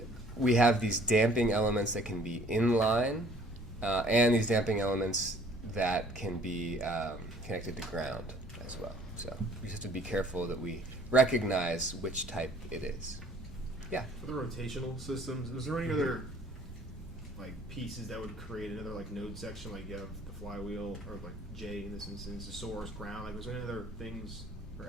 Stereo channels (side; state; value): both; normal; correlation 0.56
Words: we have these damping elements that can be inline, and these damping elements that can be connected to ground as well. So we just have to be careful that we recognize which type it is. Yeah? For the rotational systems, is there any other like pieces that would create another like node section, like you have the flywheel, or like J in this instance, the source, ground, like was there any other things